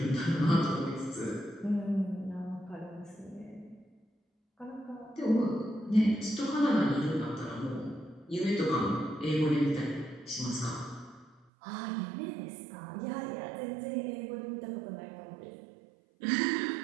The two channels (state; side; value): drops out; left; at 11.4 s